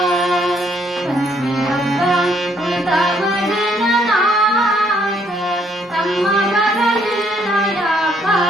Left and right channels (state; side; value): normal; both; correlation 0.68